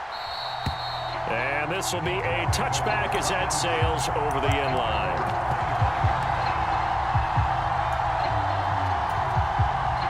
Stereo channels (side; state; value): both; identical; correlation 1.00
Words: And this will be a touchback as that sails over the end line.